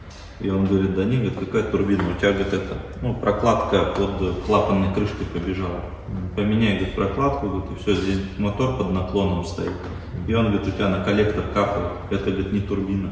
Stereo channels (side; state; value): both; identical; correlation 1.00